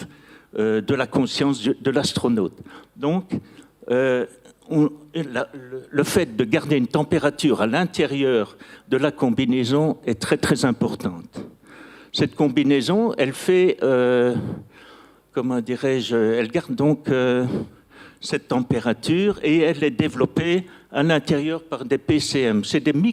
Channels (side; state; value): both; identical; correlation 1.00